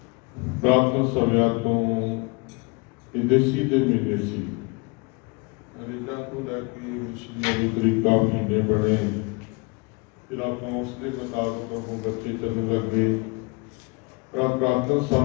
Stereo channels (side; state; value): right; quieter; 29.0 dB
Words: ਪ੍ਰਾਤਨ ਸਮਿਆਂ ਤੋਂ ਇਹ ਦੇਸੀ ਦੇ ਮਹੀਨੇ ਸੀ। ਅੰਗਰੇਜ਼ਾਂ ਤੋਂ ਲੈ ਕੇ ਮੁਸਲਿਮਾਂ ਤਰੀਕਾ ਮਹੀਨੇ ਬਣੇ, ਫਿਰ ਆਪਾਂ ਉਸ ਦੇ ਮੁਤਾਬਕ ਉਹ ਬੱਚੇ ਚੱਲਣ ਲੱਗੇ। ਪ੍ਰਾਤਨ